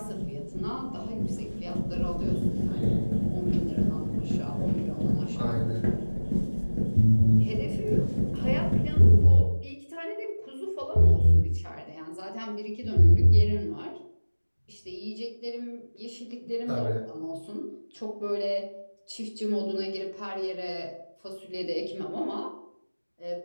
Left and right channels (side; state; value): both; inverted; correlation -1.00